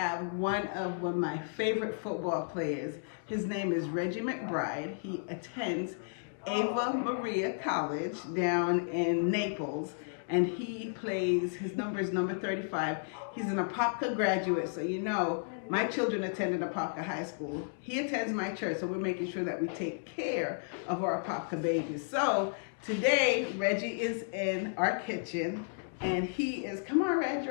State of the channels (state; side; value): silent; right; digital silence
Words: one of my favorite football players. His name is Reggie McBride. He attends Ava Marie College down in Naples, and he plays, his number is number 35. He's an Apopka graduate, so you know, my children attended Apopka High School. He attends my church, so we're making sure that we take care of our Apopka babies. So today, Reggie is in our kitchen, and he is, come on, Reg.